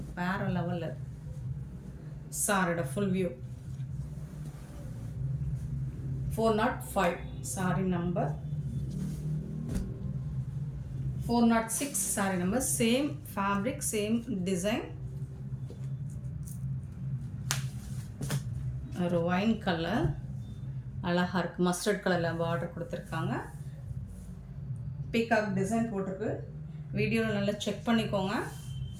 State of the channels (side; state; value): both; identical; correlation 1.00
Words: வேறு லெவலில். சாரியோட full view 405 sorry number 406 sorry number. Same fabric, same design. ஒரு ஒயின் கலர் அழகாக இருக்குது. மஸ்டர்ட் கலரில் பார்டர் கொடுத்துருக்காங்க. பீகாக் டிசைன் போட்டிருக்கு. வீடியோவில் நல்லா செக் பண்ணிக்கோங்க.